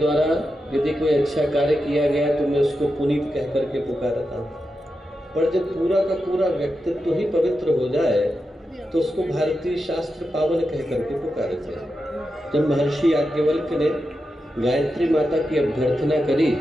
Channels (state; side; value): normal; both; correlation 0.89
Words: यदि कोई अच्छा कार्य किया गया तो मैं उसको पुनीत कह करके पुकारता हूँ। पर जब पूरा का पूरा व्यक्तित्व ही पवित्र हो जाए तो उसको भारतीय शास्त्र पावन कह करके पुकारते हैं। जब महर्षि याज्ञवल्क्य ने गायत्री माता की अभ्यर्थना करी